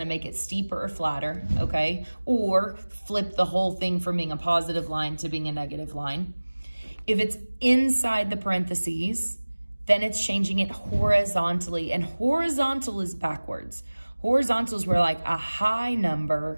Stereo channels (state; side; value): inverted; both; correlation -1.00